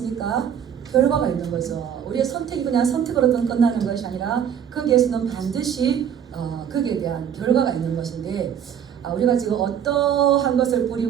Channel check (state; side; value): quieter; left; 8.7 dB